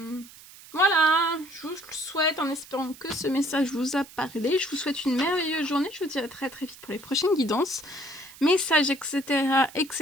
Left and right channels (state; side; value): noise; right; hiss, 20 dB below the sound